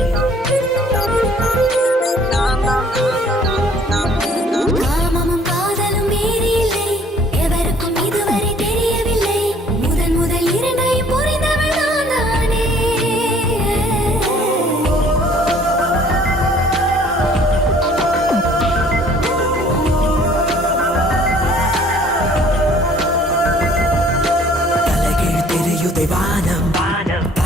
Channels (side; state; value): both; normal; correlation 0.56